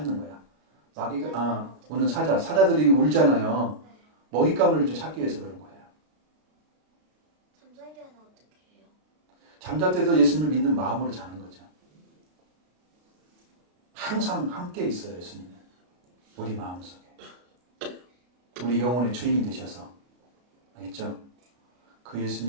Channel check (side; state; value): left; late; 33 ms